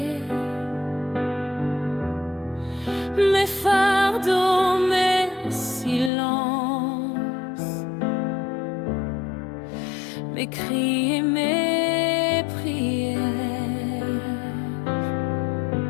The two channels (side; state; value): right; drops out; at 6.1 s